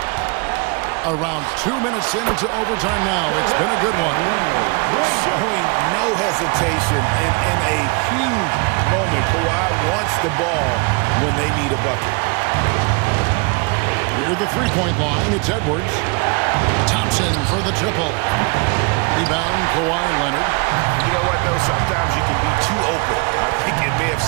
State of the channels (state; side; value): quieter; left; 30.0 dB